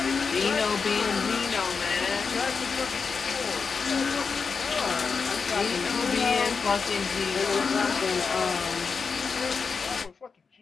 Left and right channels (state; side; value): quieter; right; 5.3 dB